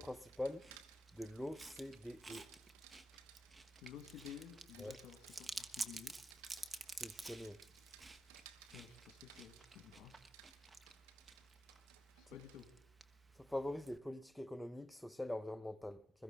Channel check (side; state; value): both; normal; correlation 0.90